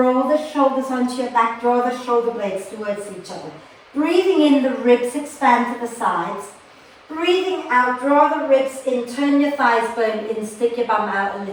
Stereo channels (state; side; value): identical; both; correlation 1.00